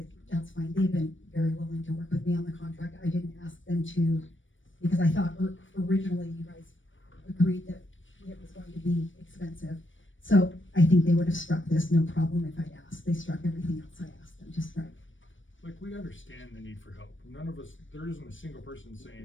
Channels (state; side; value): late; right; 0.56 ms